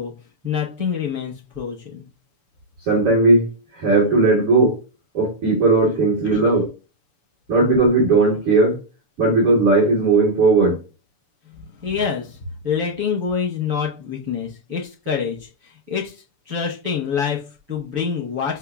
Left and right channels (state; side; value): late; left; 6.9 ms